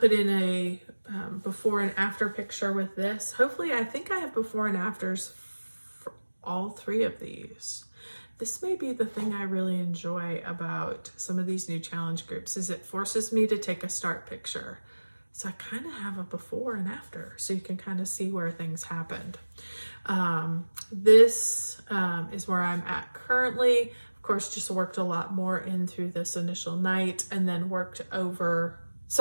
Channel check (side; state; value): both; inverted; correlation -1.00